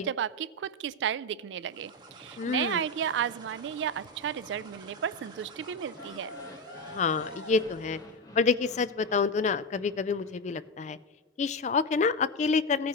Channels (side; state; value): both; normal; correlation 0.13